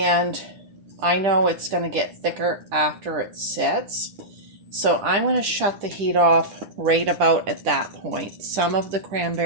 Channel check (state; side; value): late; left; 10 ms